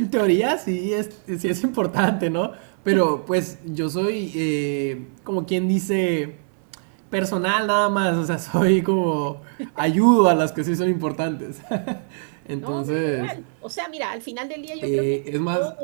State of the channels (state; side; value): silent; left; 64 dB below the other